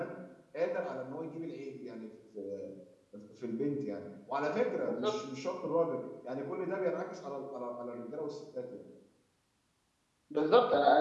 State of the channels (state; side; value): identical; both; correlation 1.00